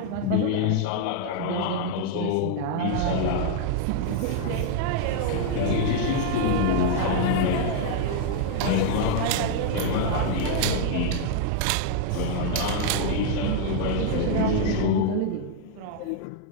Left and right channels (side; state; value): both; different; correlation 0.00